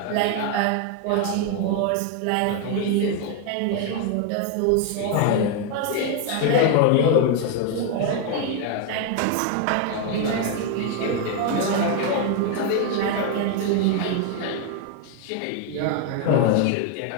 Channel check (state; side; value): different; both; correlation 0.01